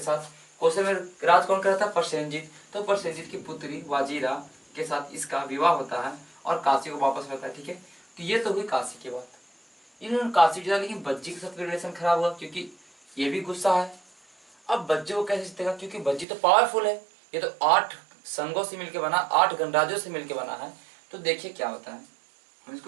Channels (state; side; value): drops out; left; at 16.2 s